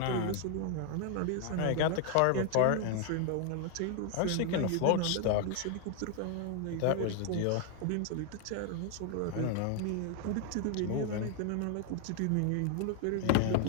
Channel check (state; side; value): different; both; correlation 0.00